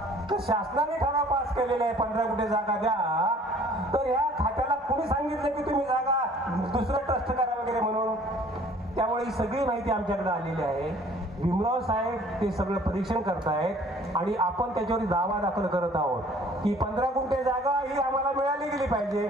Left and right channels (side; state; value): both; normal; correlation 0.54